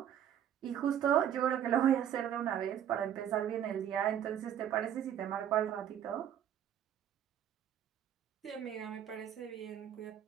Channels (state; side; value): quieter; left; 9.9 dB